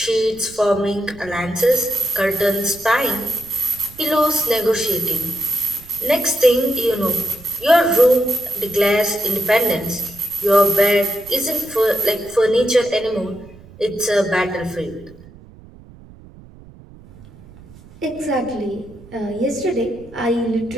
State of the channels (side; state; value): right; noise; rumble, 21 dB below the sound